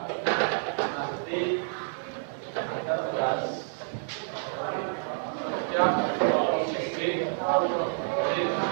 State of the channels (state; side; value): silent; left; digital silence